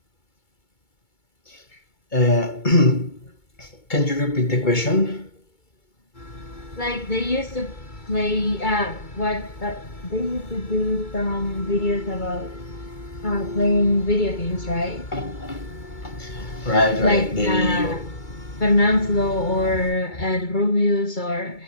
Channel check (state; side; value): late; right; 2.2 ms